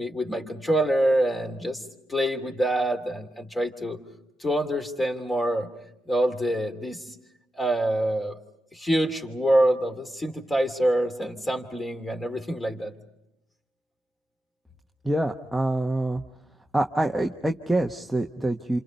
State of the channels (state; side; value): normal; both; correlation 0.89